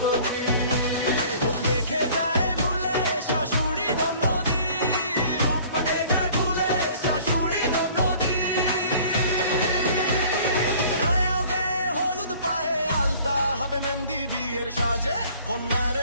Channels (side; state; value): both; inverted; correlation -0.51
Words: রূপ দেখে যায় ভুলে শাশুড়ি ননদি, রূপ দেখে যায় ভুলে শাশুড়ি ননদি। রায়াও গায়ে হলুদ পায়ে আলতা হাতে মেহেন্দি বিয়ের সাজে